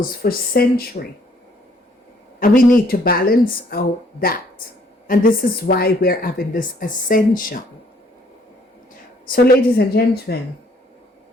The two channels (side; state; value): both; normal; correlation 0.64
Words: for centuries, and we need to balance out that. And this is why we're having this ascension. So, ladies and gentlemen,